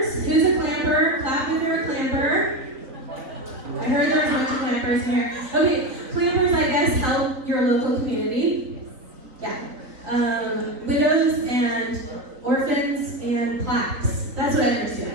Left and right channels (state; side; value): late; left; 3.9 ms